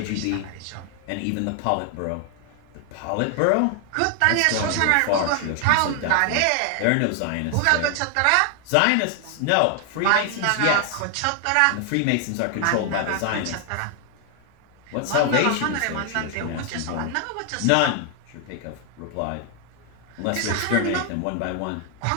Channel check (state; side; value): different; both; correlation 0.00